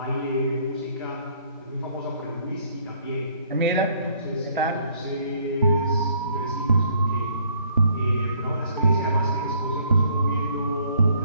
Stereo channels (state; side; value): inverted; both; correlation -0.63